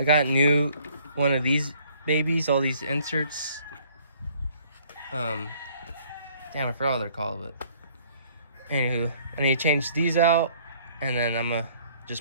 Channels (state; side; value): inverted; both; correlation -0.59